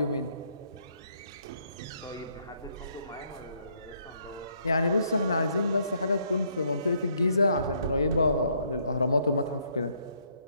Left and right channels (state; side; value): inverted; both; correlation -0.70